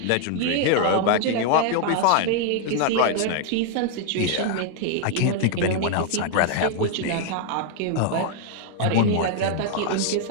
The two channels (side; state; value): both; different; correlation 0.00